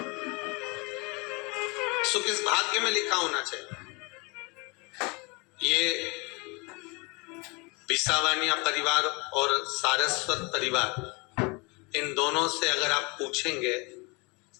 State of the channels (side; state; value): right; quieter; 28.4 dB